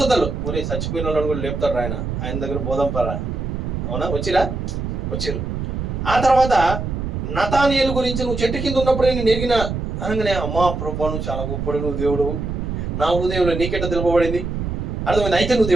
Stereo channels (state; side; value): noise; right; rumble, 4 dB below the sound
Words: ఒరే చచ్చిపోయిన వాళ్ళని కూడా లేపుతాడు ఆయన దగ్గర బోధంపరా. అవునా? వచ్చిరు. ఆ తర్వాత నతానియేలు గురించి నువ్వు చెట్టు కింద ఉన్నప్పుడే నేను ఎరిగిన అనగానే, అమ్మా ప్రభు నువ్వు చాలా గొప్పడు, నువ్వు దేవుడు, నా హృదయంలో నీకెట్ట తెలుపబడింది, అర్థమైంది, అయితే నువ్వు